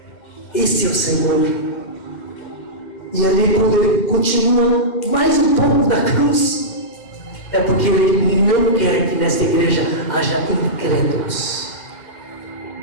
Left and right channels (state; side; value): late; right; 2.0 ms